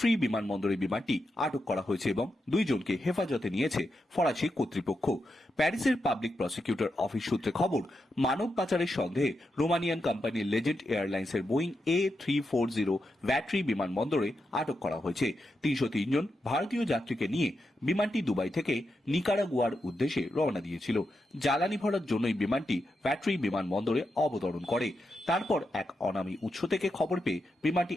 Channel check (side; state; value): both; normal; correlation 0.86